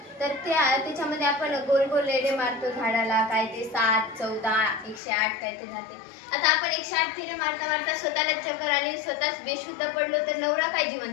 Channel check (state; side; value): drops out; right; at 5.0 s